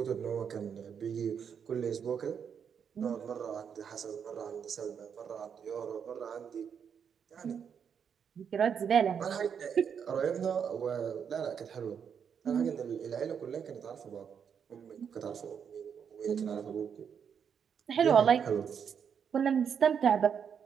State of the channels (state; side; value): quieter; left; 7.4 dB